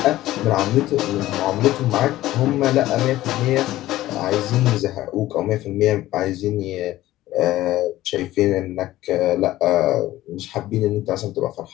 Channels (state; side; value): quieter; right; 15.5 dB